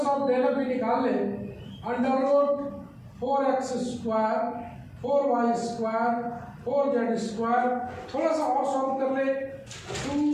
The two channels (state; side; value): identical; both; correlation 1.00